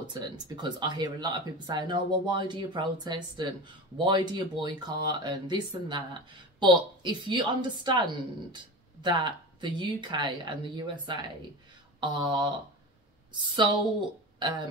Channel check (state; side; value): normal; both; correlation 0.29